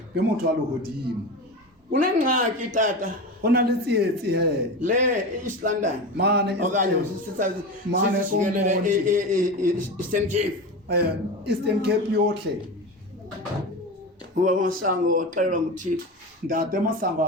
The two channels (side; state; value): both; normal; correlation 0.25